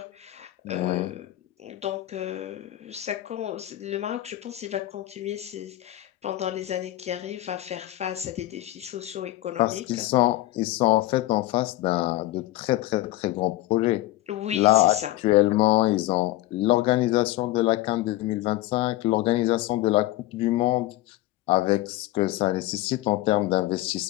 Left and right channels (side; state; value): right; quieter; 16.4 dB